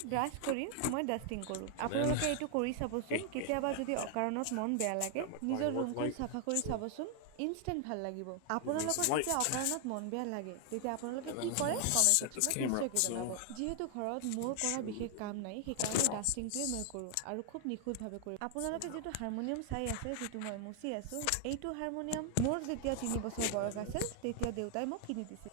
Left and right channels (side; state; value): both; different; correlation 0.00